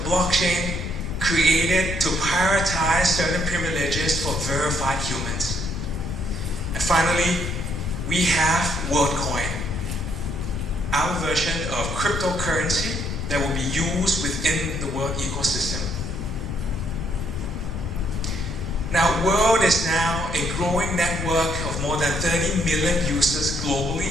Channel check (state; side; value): noise; left; rumble, 5 dB below the sound